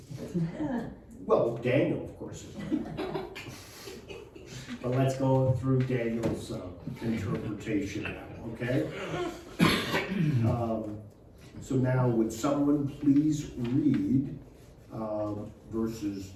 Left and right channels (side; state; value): both; identical; correlation 1.00